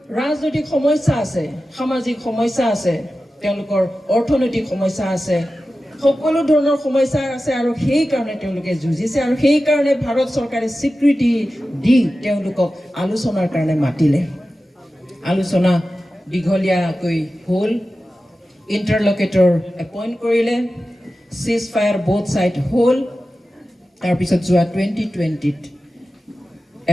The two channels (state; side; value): normal; both; correlation 0.94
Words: ৰাজনৈতিক সমস্যা আছে, সামাজিক সমস্যা আছে, তেওঁলোকৰ অৰ্থনৈতিক সমস্যা আছে, সকলো ধৰণৰ সমস্যা আছে। আৰু সেইকাৰণে তেওঁলোকে যুঁজিছে। আৰু সেইকাৰণে ভাৰত চৰকাৰে স্বীকৃতি দি তেওঁলোকক আলোচনাৰ কাৰণে মাতিলে। আলোচনা দীঘলীয়াকৈ হ'ল, ইণ্টাৰলকেটৰ এপইণ্ট কৰিলে, চিজ ফায়াৰ বোথ ছাইড হ'ল। তাৰপিছত যোৱা 2020ত